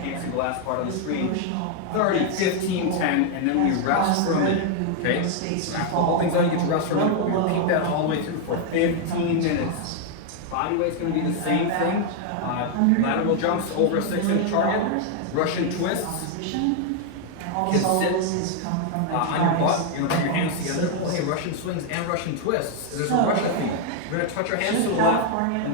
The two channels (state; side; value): different; both; correlation 0.00